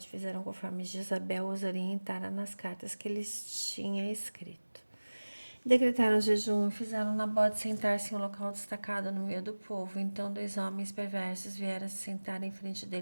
fizeram conforme Jezabel os orientara nas cartas que lhes tinha escrito. Decretaram jejum e fizeram Nabote sentar-se em um local destacado no meio do povo. Então 2 homens perversos vieram se sentar em frente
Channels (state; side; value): inverted; both; correlation -1.00